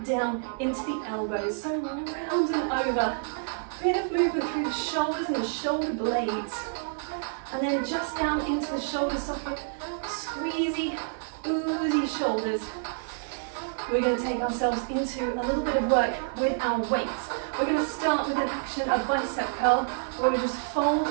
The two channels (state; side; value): silent; left; 59 dB below the other